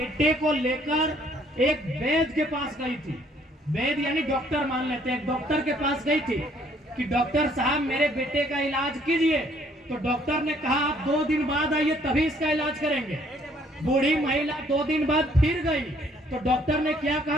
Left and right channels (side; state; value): both; normal; correlation 0.63